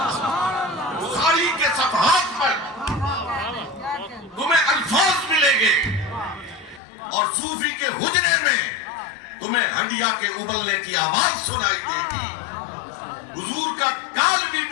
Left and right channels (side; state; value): right; drops out; at 6.8 s